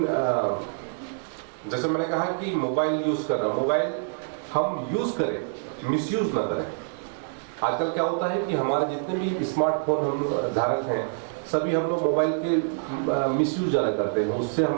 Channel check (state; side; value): silent; left; 61 dB below the other